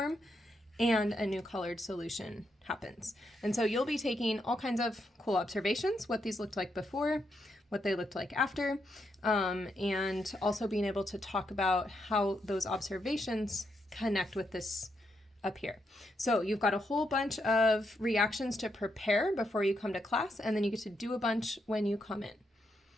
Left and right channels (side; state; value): both; normal; correlation 0.80